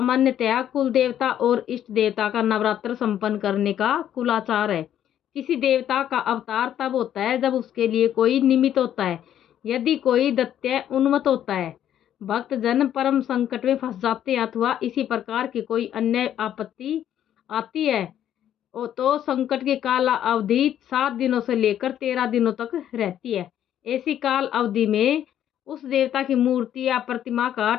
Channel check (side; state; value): right; quieter; 10.7 dB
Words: कुल देवता और इष्ट देवता का नवरात्र संपन्न करने का कुलाचार है। किसी देवता का अवतार तब होता है जब उसके लिए कोई निमित्त होता है, यदि कोई दैत्य उन्मत्त होता है, भक्त जन परम संकट में फंस जाते हैं अथवा इसी प्रकार की कोई अन्य आपत्ति आती है तो संकट की काल अवधि 7 दिनों से लेकर 13 दिनों तक रहती है। ऐसी काल अवधि में उस देवता की मूर्ति या प्रतिमा का